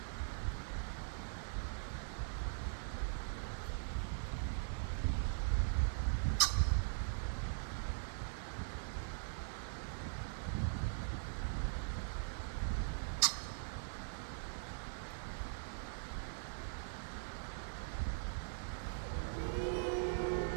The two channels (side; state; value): left; silent; digital silence